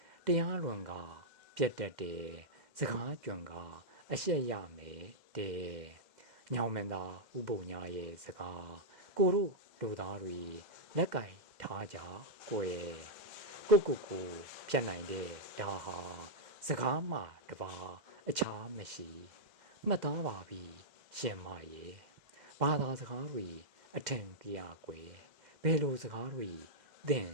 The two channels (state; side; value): late; left; 2.1 ms